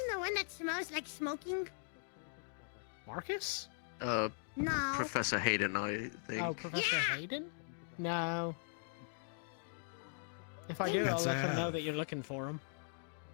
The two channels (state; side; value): silent; right; digital silence